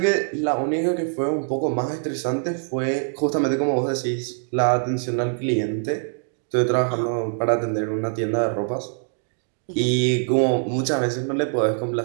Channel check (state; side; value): silent; left; digital silence